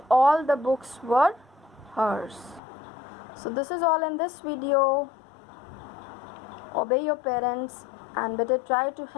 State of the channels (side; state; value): right; drops out; at 2.6 s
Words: all the books were hers. So this is all in this video. Obey your parents and better try to